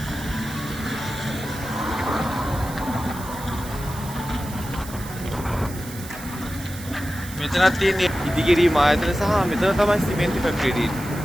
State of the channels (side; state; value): right; noise; hiss, 14 dB below the sound